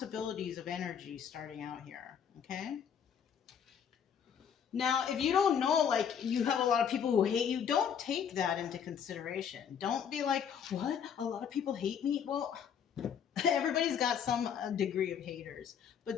of energy starting out here. Okay. Now, if you don't know, like, you have a lot of people who hate you, don't take that into consideration. Don't be like, what? A lot of people hate me? Well, everybody's got some degree of haters, but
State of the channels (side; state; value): right; quieter; 7.8 dB